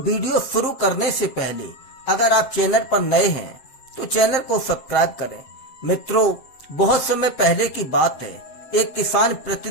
शुरू करने से पहले अगर आप चैनल पर नए हैं तो चैनल को सब्सक्राइब करें। मित्रों, बहुत समय पहले की बात है। एक किसान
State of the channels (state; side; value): late; right; 7.8 ms